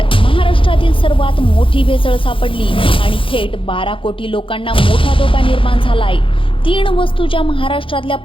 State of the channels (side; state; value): right; late; 0.25 ms